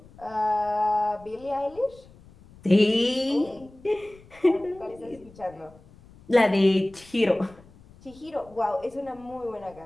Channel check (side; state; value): left; noise; rumble, 24 dB below the sound